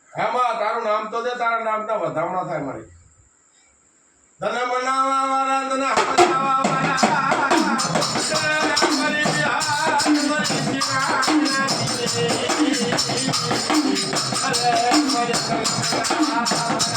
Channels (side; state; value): both; identical; correlation 1.00